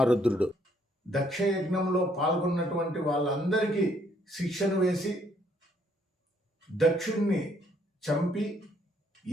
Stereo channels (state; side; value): normal; both; correlation 0.68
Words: దక్షయజ్ఞంలో పాల్గొన్నటువంటి వాళ్ళందరికీ శిక్షను వేసి దక్షుణ్ణి చంపి,